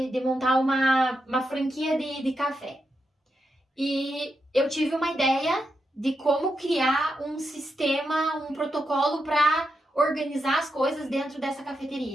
montar uma franquia de café. E eu tive uma ideia de como criar um sistema, um protocolo para organizar as coisas dentro dessa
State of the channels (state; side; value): normal; both; correlation 0.85